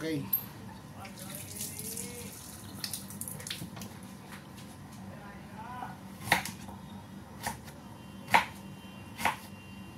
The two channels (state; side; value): identical; both; correlation 1.00